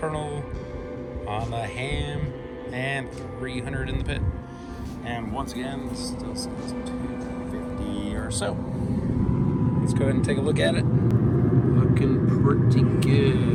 on the ham and 300 in the pit. And once again, this still says 250 or so. Let's go ahead and take a look at it. Looking pretty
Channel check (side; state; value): both; identical; correlation 1.00